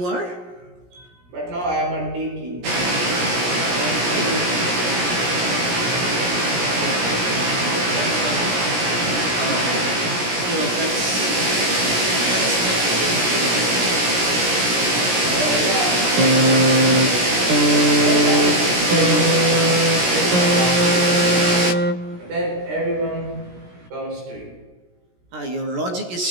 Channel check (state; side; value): late; left; 17 ms